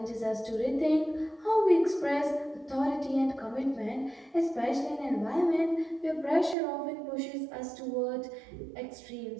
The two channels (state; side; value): drops out; left; at 6.6 s